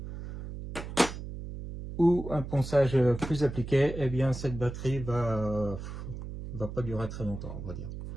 ou un ponçage plus appliqué, eh bien cette batterie va pas durer très longtemps, on va dire.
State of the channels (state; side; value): noise; right; hum, 9 dB below the sound